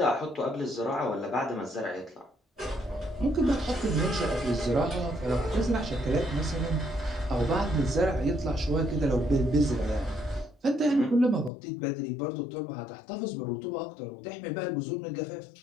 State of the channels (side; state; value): right; drops out; at 11.5 s